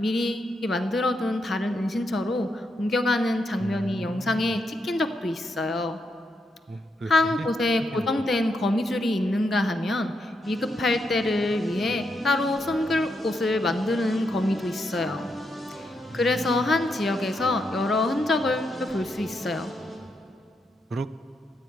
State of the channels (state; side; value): normal; both; correlation 0.81